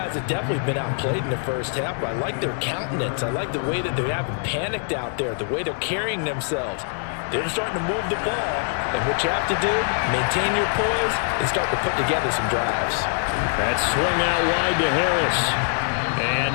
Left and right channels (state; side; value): silent; right; 58 dB below the other